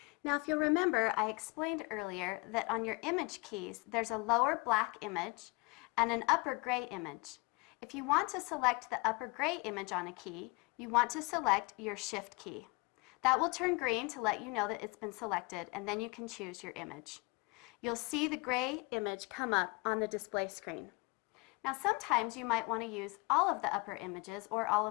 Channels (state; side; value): quieter; right; 28.0 dB